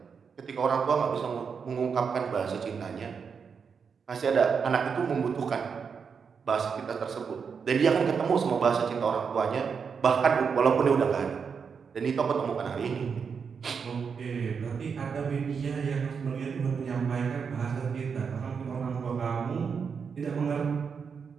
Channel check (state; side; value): quieter; left; 6.1 dB